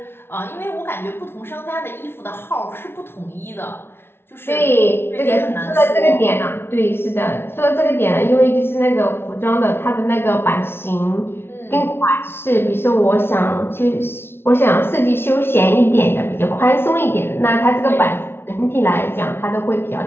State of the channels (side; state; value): right; late; 0.11 ms